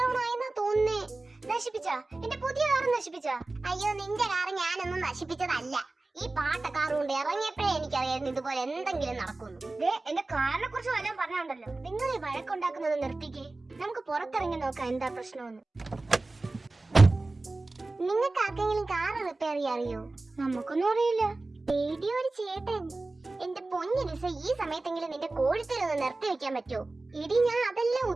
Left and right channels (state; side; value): quieter; left; 3.2 dB